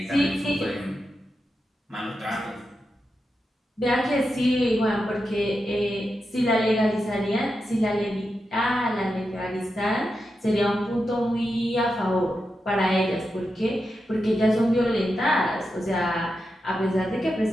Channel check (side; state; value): both; normal; correlation 0.88